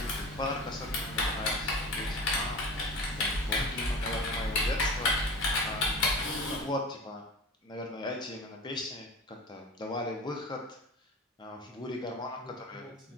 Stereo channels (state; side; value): normal; both; correlation 0.34